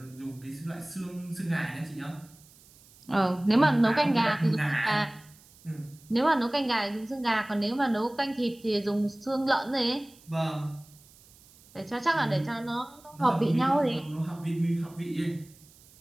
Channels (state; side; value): noise; right; hiss, 26 dB below the sound